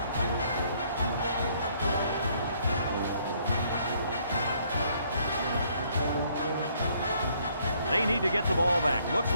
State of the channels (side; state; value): both; inverted; correlation -0.66